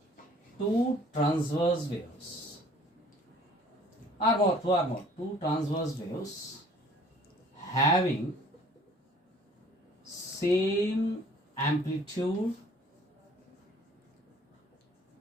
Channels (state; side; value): normal; both; correlation 0.54